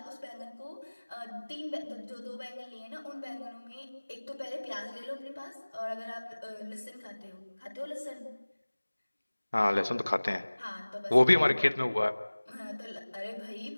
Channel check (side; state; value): both; inverted; correlation -1.00